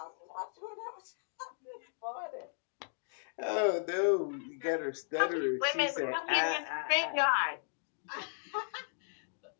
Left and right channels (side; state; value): right; silent; digital silence